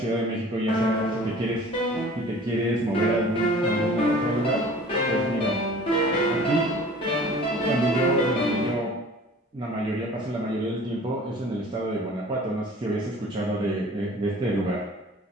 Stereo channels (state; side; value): normal; both; correlation 0.46